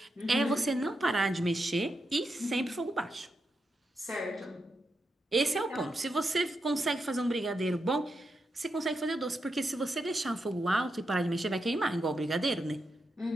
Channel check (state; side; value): normal; both; correlation 0.85